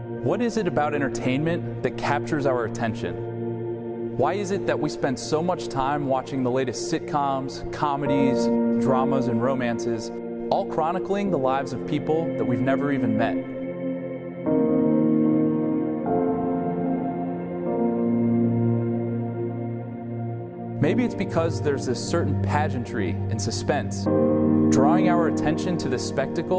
What is it about entertainment that captures our attention? Why is it that we spend so much time watching the latest sitcoms, comedies, dramas, and romances, all chronicling the lives of people that we've never even met? Maybe it's because there's this certain pageantry and suspense, drawing our attention to this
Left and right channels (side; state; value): both; identical; correlation 1.00